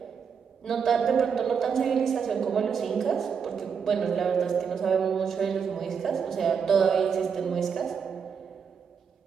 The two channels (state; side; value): quieter; left; 6.6 dB